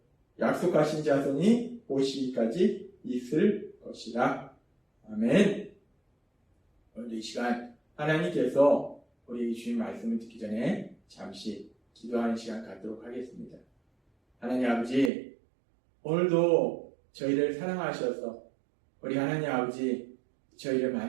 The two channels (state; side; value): drops out; left; at 15.1 s